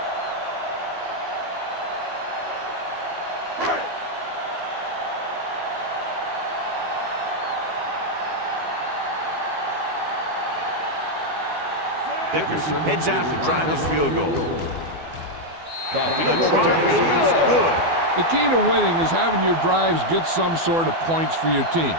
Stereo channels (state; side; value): late; left; 12 ms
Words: Dickerson heads out to try this field goal. The try is good. The key to winning is having your drives get some sort of points for your team.